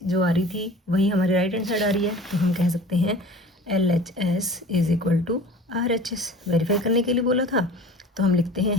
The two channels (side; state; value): both; normal; correlation 0.42